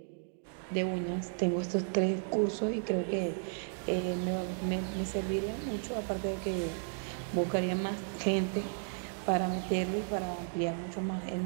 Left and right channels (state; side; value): silent; left; digital silence